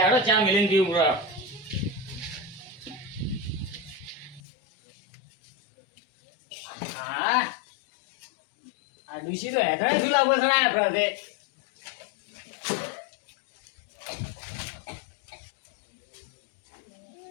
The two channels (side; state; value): right; drops out; at 4.4 s